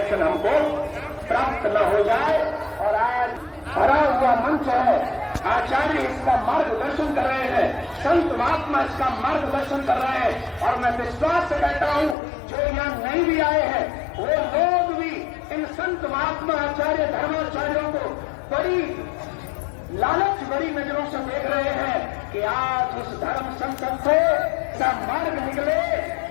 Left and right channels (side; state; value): right; drops out; at 12.2 s